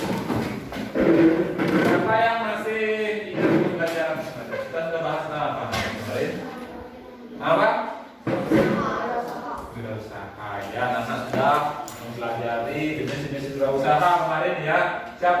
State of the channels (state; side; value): identical; both; correlation 1.00